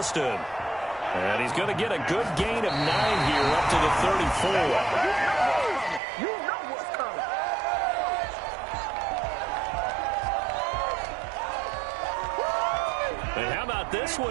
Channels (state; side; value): drops out; left; at 6.0 s